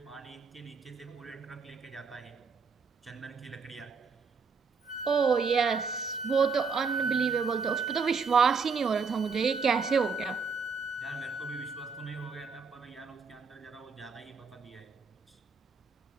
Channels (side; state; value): left; quieter; 5.1 dB